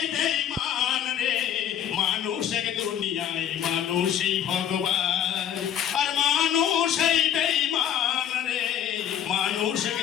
বেঈমান রে, মানুষের দুনিয়ায় মানুষই ভগবান। আর মানুষই বেঈমান রে, মানুষের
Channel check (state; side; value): quieter; right; 9.8 dB